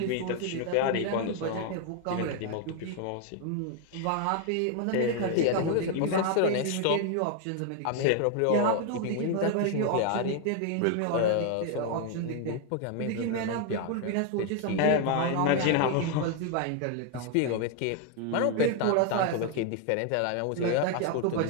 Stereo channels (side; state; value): both; different; correlation 0.00